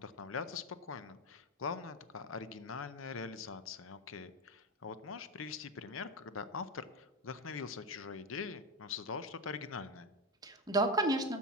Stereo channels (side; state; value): both; normal; correlation 0.15